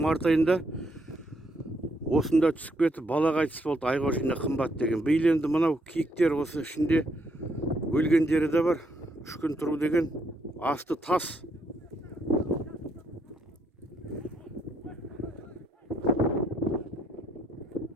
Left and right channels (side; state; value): both; normal; correlation 0.74